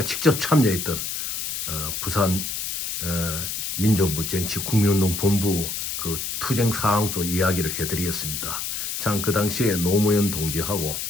직접 참여했던 부산 민족부 쟁취 국민운동 본부 그 투쟁 사항도 이야기를 해드리겠습니다. 참 그 당시에 노무현 동지하고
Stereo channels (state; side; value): noise; left; hiss, 3 dB below the sound